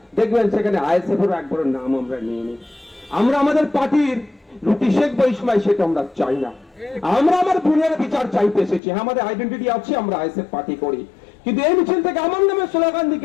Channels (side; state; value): right; drops out; at 8.8 s